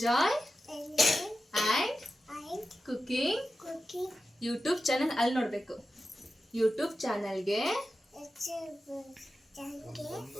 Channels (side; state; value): both; normal; correlation 0.93